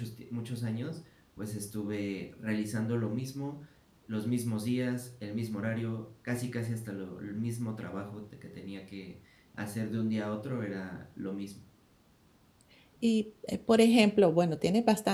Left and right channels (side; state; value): both; identical; correlation 1.00